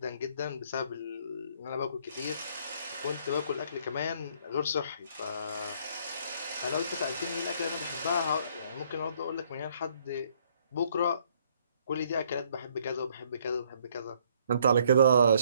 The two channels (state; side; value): inverted; both; correlation -0.65